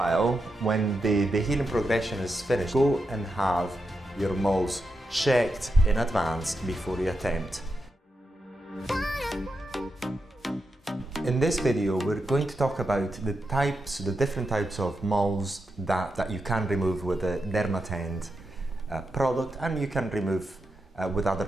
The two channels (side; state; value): both; normal; correlation 0.87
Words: when the healing progression is finished, go and have your moles checked in advance before you attempt. In this video, we're going to talk about the different types of moles that you can remove with the Areton product, and you can remove with other